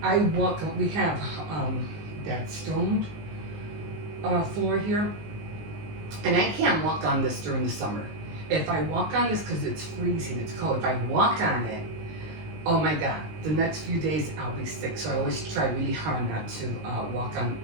I walk, we have that stone floor here, and I can't walk on this during the summer. if I walk on this, because it's freezing, it's cold, if I walk on it, oh my God, the next few days I'll be sick. So I always try really hard not to walk on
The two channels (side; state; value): left; late; 19 ms